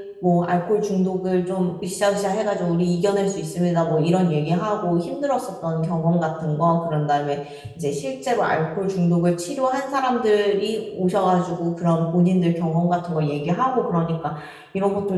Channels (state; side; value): identical; both; correlation 1.00